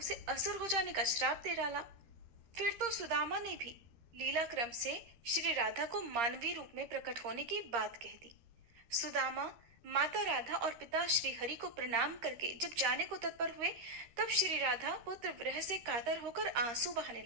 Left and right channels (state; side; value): late; left; 13 ms